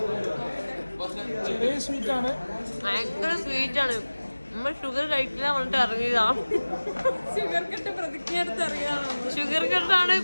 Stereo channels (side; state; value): both; inverted; correlation -1.00